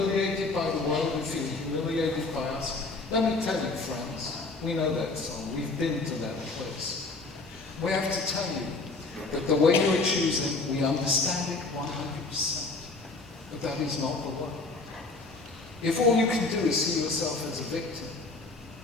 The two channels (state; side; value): quieter; right; 3.5 dB